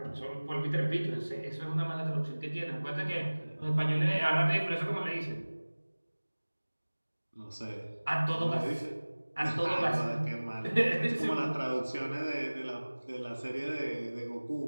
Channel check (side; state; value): both; inverted; correlation -1.00